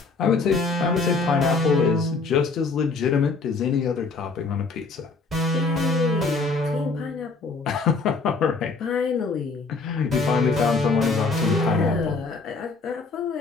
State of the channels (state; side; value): quieter; right; 4.0 dB